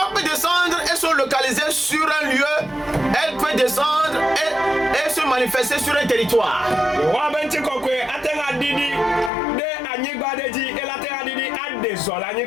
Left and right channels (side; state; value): right; drops out; at 9.3 s